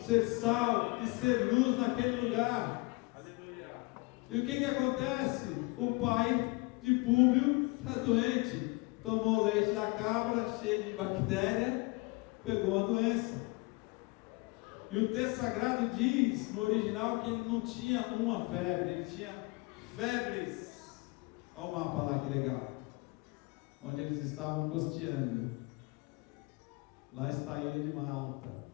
sal e ser luz naquele lugar. Aleluia. E o que acontece? O pai de Públio está doente, tomou leite da cabra, cheio de bactéria, pegou uma doença. E o texto sagrado diz, no original, que ele não tinha uma febre, ele tinha febres. Olha o mapa lá, que legal. Onde eles estavam costeando. Lá está a ilha de Malta.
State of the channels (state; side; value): quieter; right; 25.8 dB